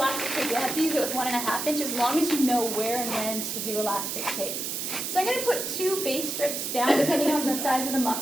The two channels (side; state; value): right; noise; hiss, 3 dB below the sound